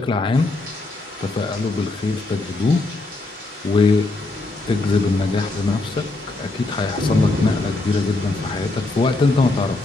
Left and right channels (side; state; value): right; quieter; 3.1 dB